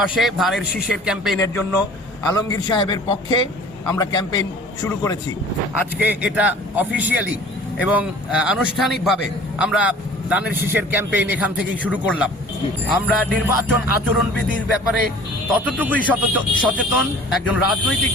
ধানের শীষের ক্যাম্পেইনের জন্য আলমগীর সাহেবের পক্ষে আমরা ক্যাম্পেইন শুরু করেছি। আজকে এটা অফিসিয়ালি এবং আনুষ্ঠানিকভাবে আমরা ধানের শীষের ক্যাম্পেইন এখান থেকেই শুরু করলাম। আমরা নির্বাচন আচরণবিধির ব্যাপারে ততটুকুই সচেতন একজন রাজনৈতিক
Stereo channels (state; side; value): normal; both; correlation 0.47